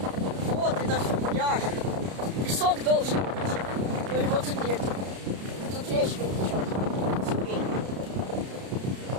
пляж. Песок должен быть. Но его тут нет. Тут речка течет. Теперь.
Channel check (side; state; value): left; late; 32 ms